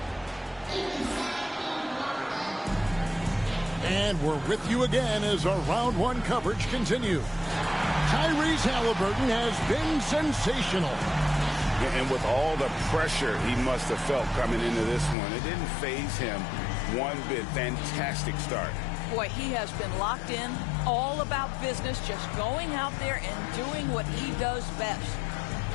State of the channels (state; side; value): drops out; right; at 15.2 s